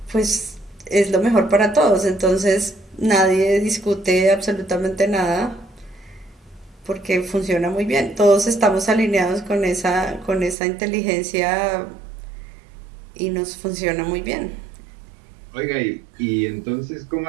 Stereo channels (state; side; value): drops out; left; at 10.6 s